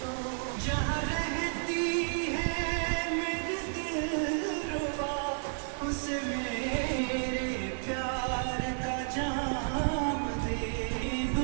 जहाँ रहती है मेरे दिलरुबा उसे मेरे प्यार का जाम दे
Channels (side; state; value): left; silent; 57 dB below the other